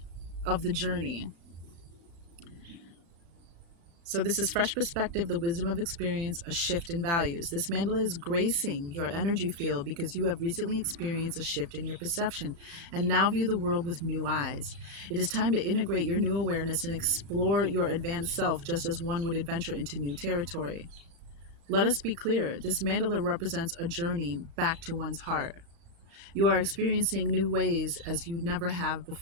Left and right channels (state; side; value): late; left; 35 ms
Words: of the journey. So this is fresh perspective, the wisdom of experience, a shift in values. This mandala is gracing your energy field because you have recently experienced a shift in your perception and now view the world with new eyes. It is time to integrate your new awareness and explore your advanced self just as one would adventure into new territory. Let us be clear, this mandala represents a journey back to one's heart. You are experiencing new ways as you never have